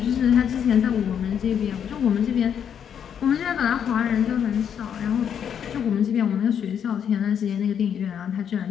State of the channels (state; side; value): quieter; right; 8.3 dB